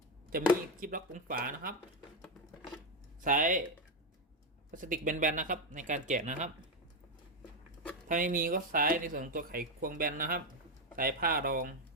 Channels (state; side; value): normal; both; correlation 0.07